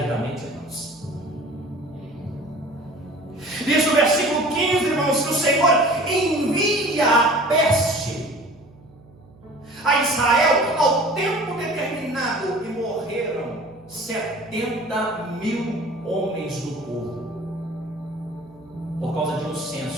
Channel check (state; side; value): noise; right; hum, 25 dB below the sound